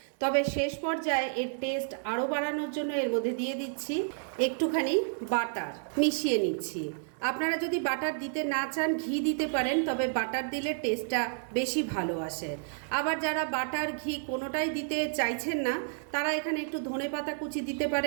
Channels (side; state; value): left; silent; 57 dB below the other